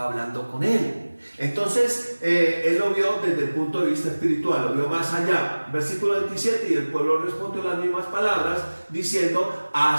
hablando con Él. Entonces, él lo vio desde el punto de vista espiritual, lo vio más allá. Versículo 27, y el pueblo respondió las mismas palabras, diciendo,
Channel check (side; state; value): both; inverted; correlation -1.00